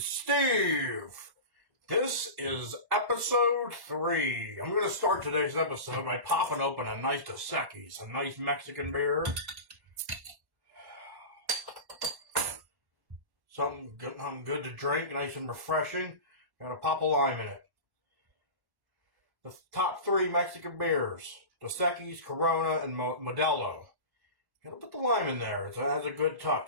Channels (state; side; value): late; left; 1.1 ms